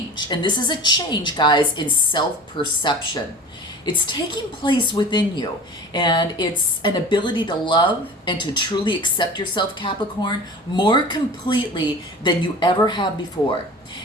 And this is a change, guys, in self-perception. It's taking place within you, and it's an ability to love and to truly accept yourself, Capricorn, more completely than you ever have before.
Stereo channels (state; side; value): normal; both; correlation 0.36